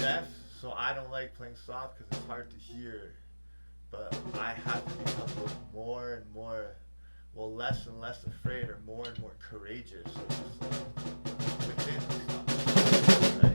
so I don't like playing soft because it's hard to hear, but I have to become more and more, well, less and less afraid, or more and more courageous within the soft, right?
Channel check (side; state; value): both; inverted; correlation -1.00